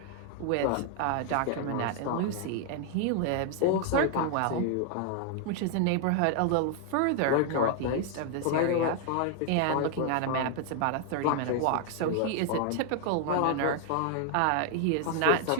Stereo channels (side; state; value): both; different; correlation 0.00